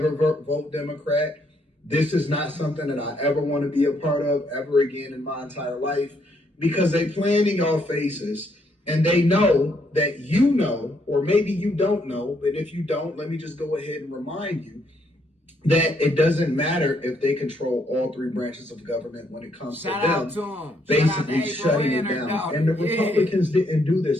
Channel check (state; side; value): normal; both; correlation 0.72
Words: vote Democrat. This is not something that I ever want to be a part of ever again in my entire life, because they plan in your faces and they know that you know, or maybe you don't know, but if you don't, let me just go ahead and remind you that it doesn't matter if they control all three branches of government when it comes to them basically shutting it down. And the Republicans didn't do